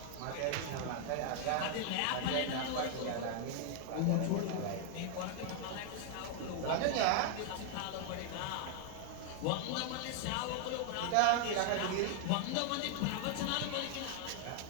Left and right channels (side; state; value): both; different; correlation 0.00